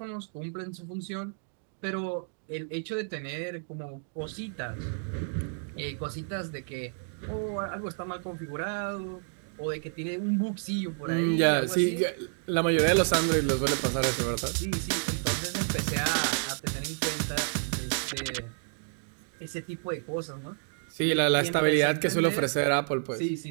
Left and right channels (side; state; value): left; silent; 56 dB below the other